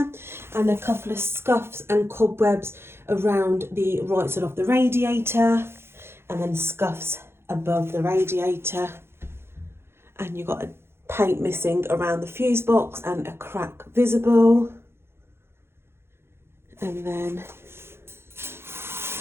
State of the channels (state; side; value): late; left; 0.12 ms